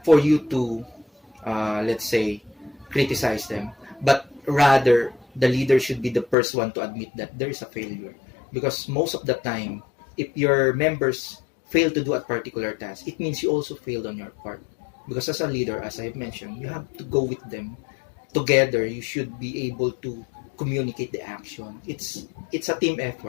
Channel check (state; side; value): drops out; right; at 6.4 s